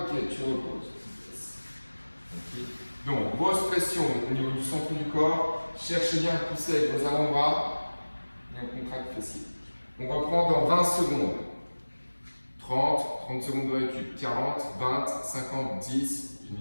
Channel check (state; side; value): inverted; both; correlation -1.00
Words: tu reposes. Okay. Donc, grosse pression au niveau du centre du corps. Cherchez bien à pousser avec vos avant-bras. Et on contracte fessier. On reprend dans 20 secondes. 30 secondes de récup. 40, 20, 50, 10,